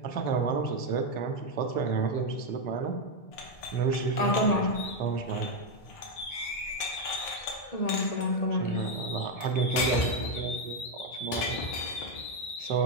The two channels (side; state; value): right; late; 1.6 ms